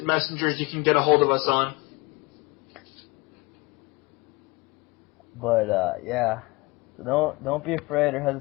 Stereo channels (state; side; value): quieter; right; 24.9 dB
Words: messengers you can get a hold of us on. But yeah, so don't be afraid or